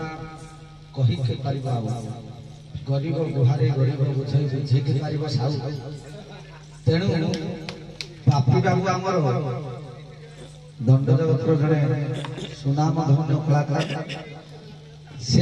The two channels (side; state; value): both; identical; correlation 1.00